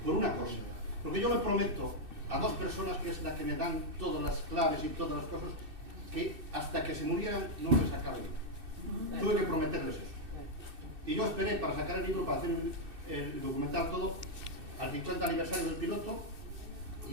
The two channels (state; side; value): late; left; 2.6 ms